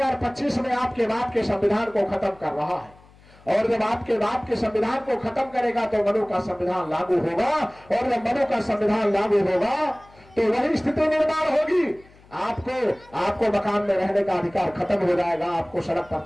में आपके बाप के संविधान को खत्म कर रहा है, और जब आपके बाप के संविधान को खत्म करेगा तो मनु का संविधान लागू होगा, और जब मनु का संविधान लागू होगा तो वही स्थिति निर्माण होगी। आपको मकान में रहने का अधिकार खत्म हो जाएगा, आपको सड़क पर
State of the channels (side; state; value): left; noise; hum, 26 dB below the sound